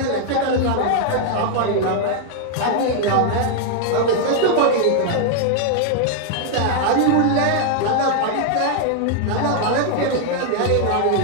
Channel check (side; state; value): both; different; correlation 0.00